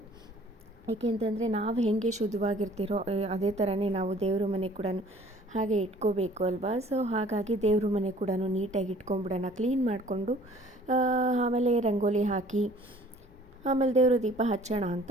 ಏಕೆಂತಂದರೆ ನಾವು ಹೇಗೆ ಶುದ್ಧವಾಗಿರ್ತೀರೋ ಅದೇ ಥರನೇ ನಾವು ದೇವ್ರ ಮನೆ ಕೂಡ ಹಾಗೆ ಇಟ್ಕೋಬೇಕು ಅಲ್ವಾ. ಸೊ ಹಾಗಾಗಿ ದೇವ್ರ ಮನೆ ಕೂಡ ನೀಟಾಗಿ ಇಟ್ಕೊಂಬಿಡೋಣ, ಕ್ಲೀನ್ ಮಾಡಿಕೊಂಡು ಆಮೇಲೆ ರಂಗೋಲಿ ಹಾಕಿ ಆಮೇಲೆ ದೇವರು ದೀಪ ಹಚ್ಚೋಣ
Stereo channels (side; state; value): both; normal; correlation 0.53